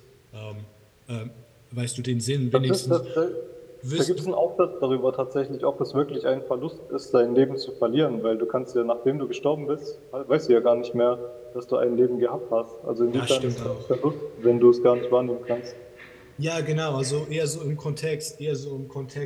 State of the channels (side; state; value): both; identical; correlation 1.00